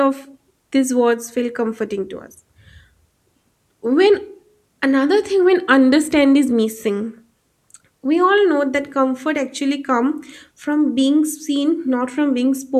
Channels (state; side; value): identical; both; correlation 1.00